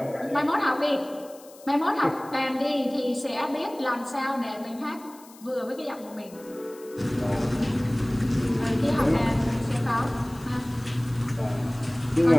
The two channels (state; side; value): noise; left; hiss, 23 dB below the sound